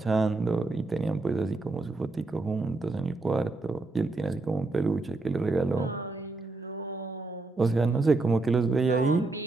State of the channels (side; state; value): left; quieter; 3.3 dB